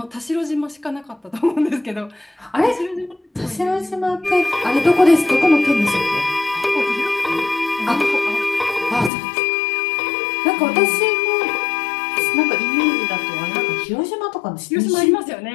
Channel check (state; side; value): drops out; right; at 9.1 s